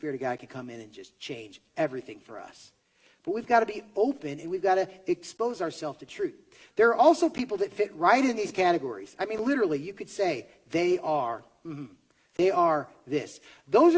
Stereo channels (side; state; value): both; identical; correlation 1.00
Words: of God can come in and just change everything for us. But we've got to be open, and we've got to expose ourselves to truth. There are also people that fit right in these categories. I mean, literally, you could say, they are this. Those